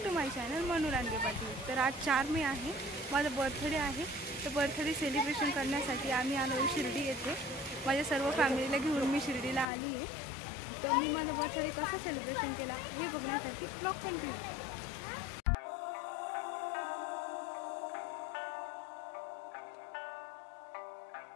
to my channel Manu Range Patil. तर आज 4 मे आहे, माझा बर्थडे आहे। तर बर्थडे सेलिब्रेशन करण्यासाठी आम्ही आलो शिर्डी येथे। माझ्या सर्व फॅमिलीला घेऊन मी शिर्डीला आली आहे। तर मी माझा बर्थडे कसा सेलिब्रेशन केला हे बघण्यासाठी ब्लॉग कंटिन्यू करा।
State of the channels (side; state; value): right; drops out; at 9.7 s